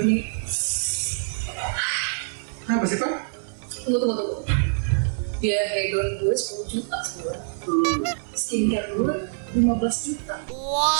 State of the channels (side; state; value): left; silent; 59 dB below the other